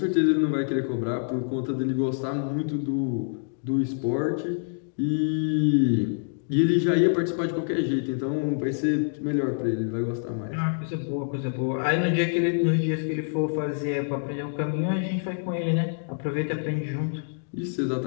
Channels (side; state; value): right; silent; digital silence